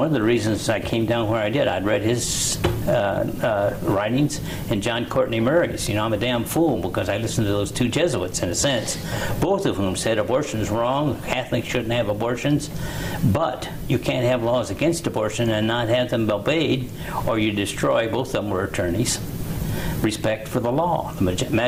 of the reasons I came down where I did, I'd read his writings and John Courtney Murray's. You know, I'm a damn fool because I listened to those two Jesuits, in a sense, both of whom said abortion is wrong, Catholics shouldn't have abortions, but you can't have laws against abortion and not have them obeyed, or you destroy, both of them were attorneys, respect for the law. The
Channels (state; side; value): identical; both; correlation 1.00